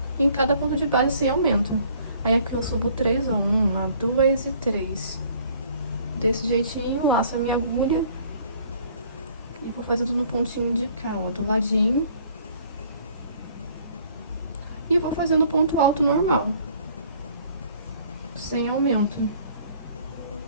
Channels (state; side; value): inverted; both; correlation -0.57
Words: em cada ponto de base sem aumento. Aí aqui eu subo 3, ó. 1, 2 e 3. Desse jeitinho, laço a minha agulha. E vou fazendo no pontinho de cá, ó, do ladinho. E vou fazendo ponto alto normal, sem aumento.